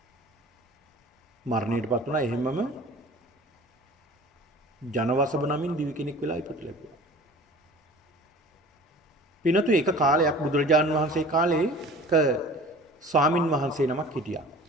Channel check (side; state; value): both; normal; correlation 0.43